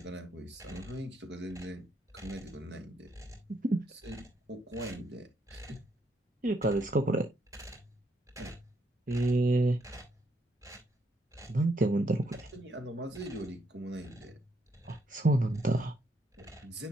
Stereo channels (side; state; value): both; normal; correlation 0.75